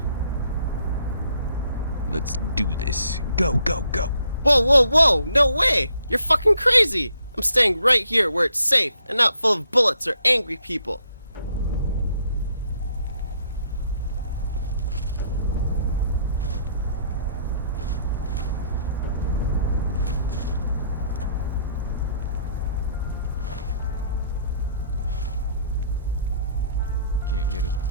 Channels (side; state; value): both; inverted; correlation -0.68